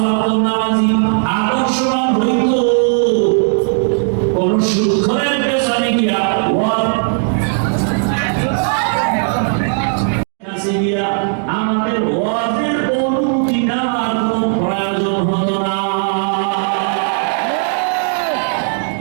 ওয়াক্ত নামাজি আদর্শবান হইত, কোন সুদখোরের পেছনে গিয়া আমাদের ওয়াজের অনুমতি নেওয়ার কোনো প্রয়োজন হতো না।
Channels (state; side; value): silent; left; 69 dB below the other